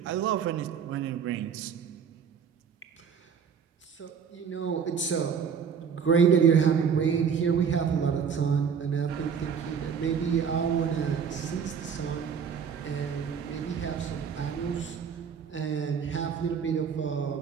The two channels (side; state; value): left; quieter; 6.9 dB